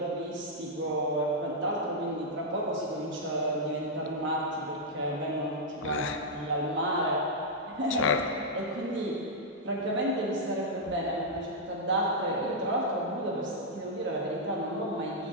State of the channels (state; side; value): normal; both; correlation -0.06